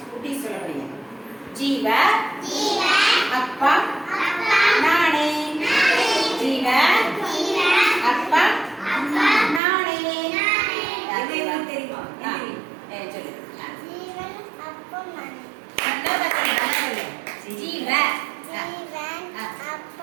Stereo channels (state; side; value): drops out; left; at 9.6 s